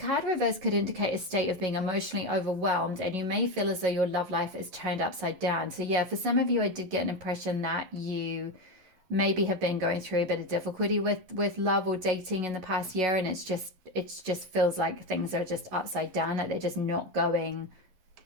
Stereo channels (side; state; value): left; late; 11 ms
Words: reverse could indicate a state of being emotionally overwhelmed, and you may feel as though your love life is turned upside down. So yeah, for some of you, I did get an impression that you maybe have been going through a bit of difficulty with love or dating in the past year, and it just feels like things are just upside down, like they're just not going.